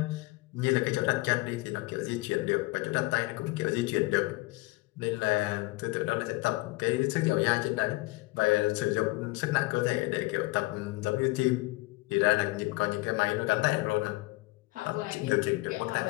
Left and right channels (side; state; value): right; quieter; 22.2 dB